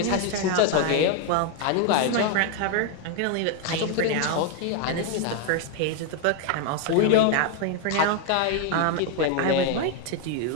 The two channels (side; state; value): both; different; correlation 0.01